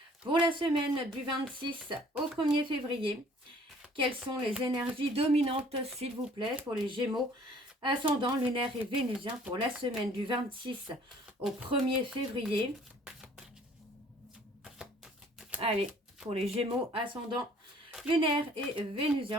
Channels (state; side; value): normal; both; correlation 0.55